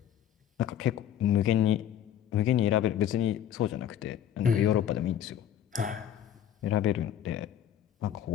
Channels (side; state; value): right; quieter; 10.3 dB